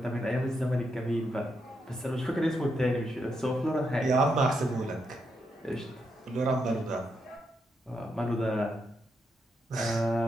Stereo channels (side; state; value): both; normal; correlation 0.81